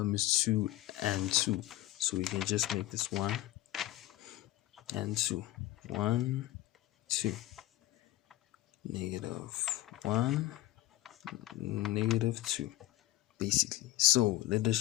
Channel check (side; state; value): right; quieter; 16.1 dB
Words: is 2 and 2, so we can just make this 1 and 2. 1 2, negative 1 negative 2, basically. So let us